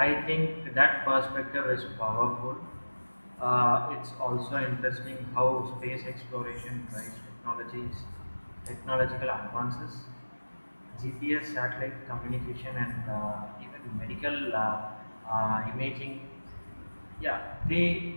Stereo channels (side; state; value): both; inverted; correlation -1.00